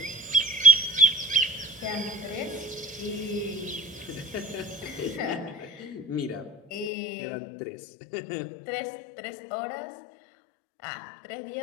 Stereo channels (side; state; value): right; drops out; at 6.9 s